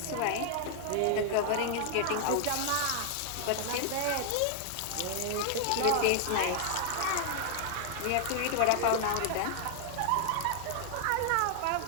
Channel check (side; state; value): both; different; correlation 0.00